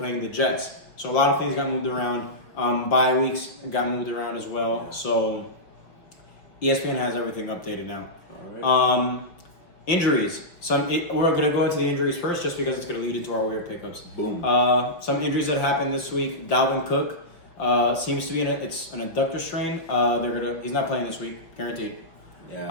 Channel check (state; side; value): late; right; 5.4 ms